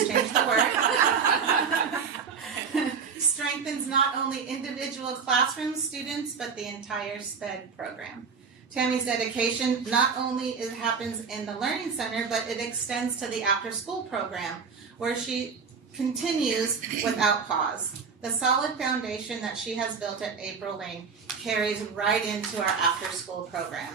change the word, strengthens not only individual classroom students, but the entire SPED program. Tammy's dedication not only happens in the Learning Center, but it extends to the after-school program, where she continues without pause. The solid foundation that she has built at April Lane carries right into our after-school program,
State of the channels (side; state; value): left; quieter; 5.8 dB